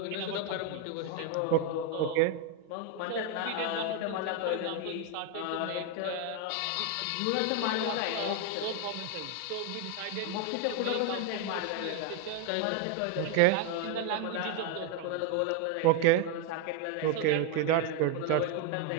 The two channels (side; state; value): both; different; correlation 0.01